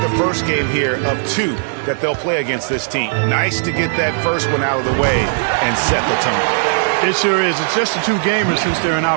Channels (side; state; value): left; silent; digital silence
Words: the first game here of 2 that they'll play against this team. Nice to get that first one out of the way and set the tone. It sure is. It's just the 2 gamers since they're in